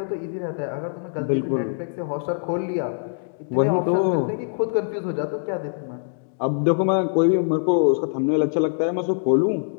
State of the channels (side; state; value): right; silent; digital silence